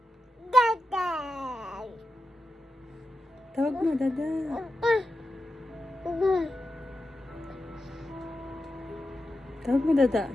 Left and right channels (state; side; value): normal; both; correlation 0.89